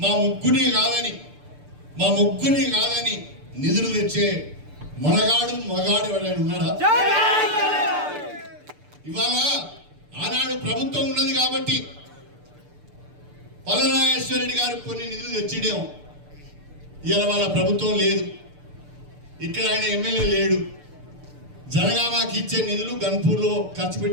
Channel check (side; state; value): left; late; 6.8 ms